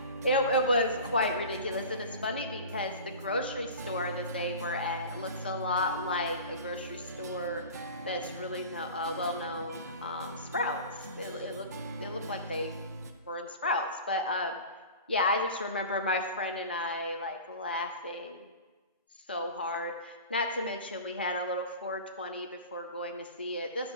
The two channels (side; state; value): both; inverted; correlation -0.36